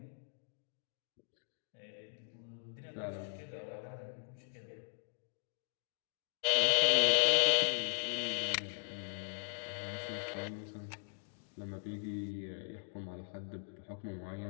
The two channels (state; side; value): silent; right; digital silence